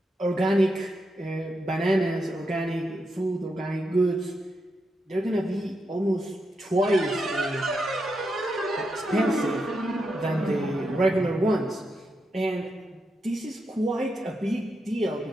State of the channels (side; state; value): both; normal; correlation 0.84